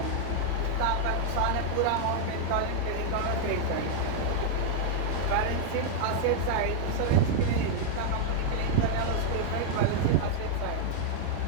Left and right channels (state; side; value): different; both; correlation -0.01